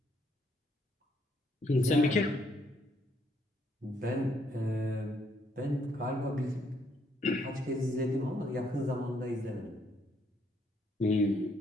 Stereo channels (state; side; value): normal; both; correlation 0.71